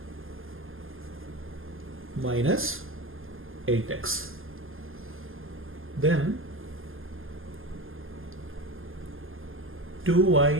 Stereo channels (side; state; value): left; late; 0.59 ms